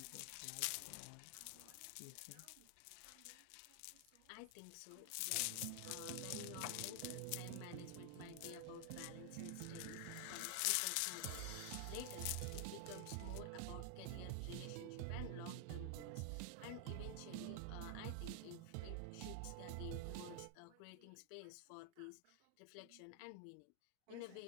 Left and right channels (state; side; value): different; both; correlation 0.00